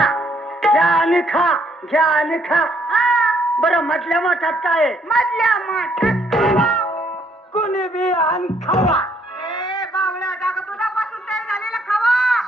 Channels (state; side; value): normal; both; correlation 0.68